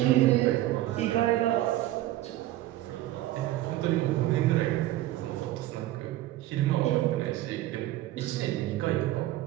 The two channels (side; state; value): left; quieter; 15.1 dB